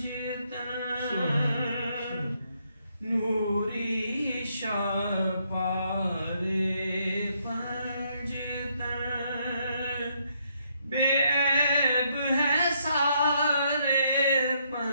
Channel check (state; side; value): inverted; both; correlation -0.74